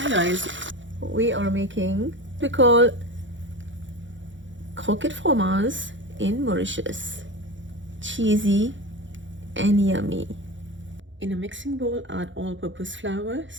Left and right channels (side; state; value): left; late; 0.55 ms